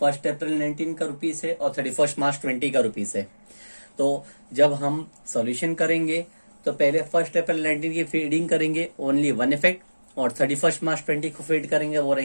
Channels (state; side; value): inverted; both; correlation -1.00